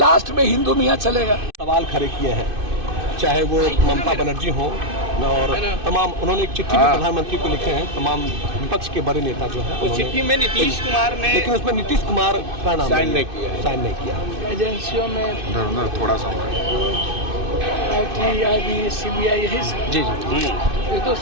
में हिंदू मियाँ चलेगा। सवाल खड़े किए हैं, चाहे वो ममता बनर्जी हो और तमाम, उन्होंने एक चिट्ठी भी प्रधानमंत्री को लिखे हैं, तमाम विपक्ष के बड़े नेता जो है। उस चिट्ठी में नीतीश कुमार ने, लेकिन उसमें नीतीश कुमार का नाम साइन नहीं किया। एजेंसियों में थोड़ा सा आईटी, आईबी, सीबीआई यही सब। जी जी ये तो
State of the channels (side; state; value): left; late; 2.6 ms